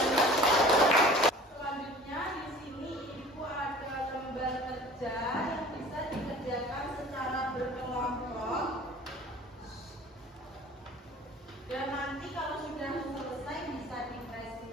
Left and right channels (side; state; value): both; normal; correlation 0.45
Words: selanjutnya di sini Ibu ada lembar kerja yang bisa dikerjakan secara berkelompok. Dan nanti kalau sudah selesai bisa